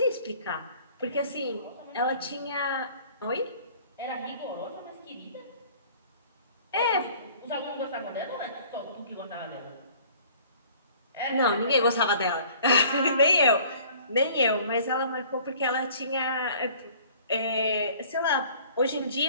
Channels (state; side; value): inverted; both; correlation -0.51